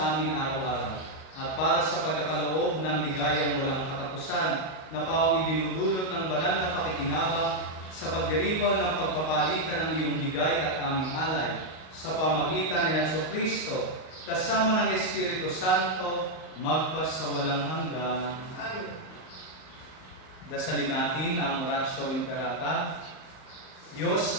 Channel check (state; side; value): late; right; 38 ms